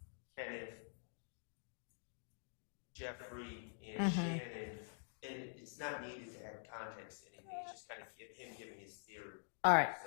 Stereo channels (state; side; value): silent; right; digital silence